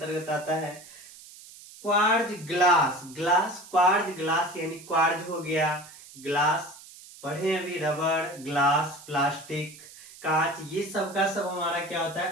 आता है। Quartz glass, glass quartz glass यानी क्वार्ज हो गया, ग्लास पढ़े अभी, रबर, ग्लास, प्लास्टिक, कांच, ये सब का सब हमारा क्या होता है,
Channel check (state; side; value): noise; right; hiss, 19 dB below the sound